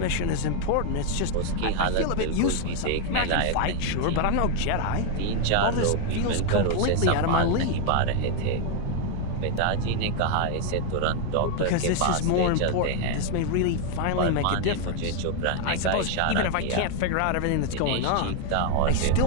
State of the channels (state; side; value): different; both; correlation 0.00